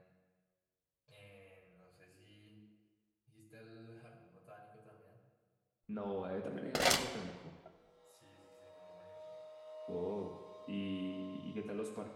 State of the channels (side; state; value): both; identical; correlation 1.00